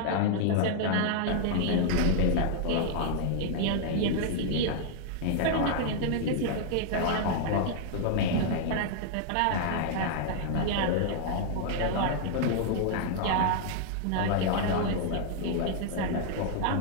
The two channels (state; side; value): different; both; correlation -0.01